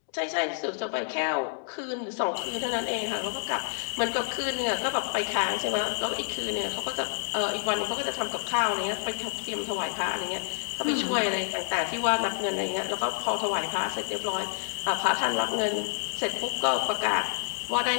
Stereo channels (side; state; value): right; silent; digital silence